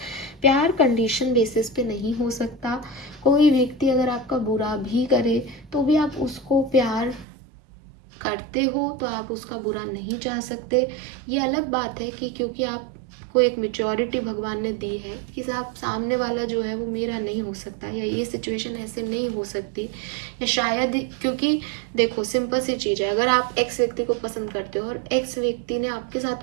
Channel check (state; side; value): drops out; left; at 7.2 s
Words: प्यार कंडीशन बेसिस पे नहीं हो सकता. कोई व्यक्ति अगर आपका बुरा भी करे तो भी आप उसको प्यार करते हो, तो आप उसका बुरा नहीं चाह सकते. ये अलग बात है कि क्योंकि आपको एक मेच्योरिटी भगवान ने दी है कि साहब सामने वाला जो है वो मेरा नहीं हो सकता, या ये सिचुएशन ऐसे नहीं हो सकती, या शायद क्योंकि देखो सिंपल सी चीज़ है, अगर आप एक्स व्यक्ति को पसंद करते हो और एक्स व्यक्ति ने आपके